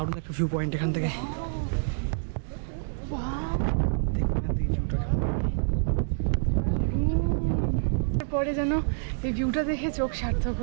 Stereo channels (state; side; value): silent; left; digital silence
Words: একটা ভিউ পয়েন্ট এখান থেকে। পরে যেন এই ভিউটা দেখে চোখ সার্থক